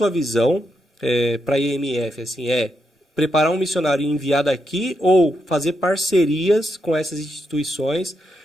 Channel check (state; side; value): normal; both; correlation 0.82